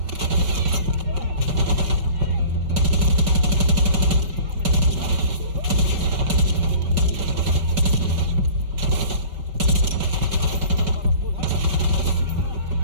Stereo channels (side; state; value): left; late; 5.2 ms